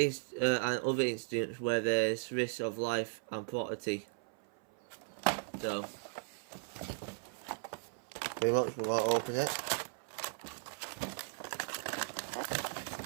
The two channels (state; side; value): silent; left; 53 dB below the other